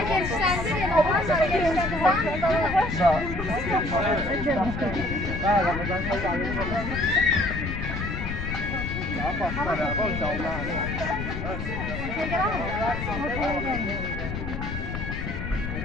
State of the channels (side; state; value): left; noise; rumble, 5 dB below the sound